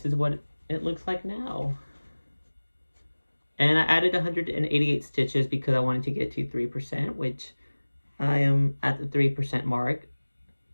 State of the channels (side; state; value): both; inverted; correlation -1.00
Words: is what it looks like now. And I added 188 stitches because I wanted to get to 3%, which I am at the 3% mark.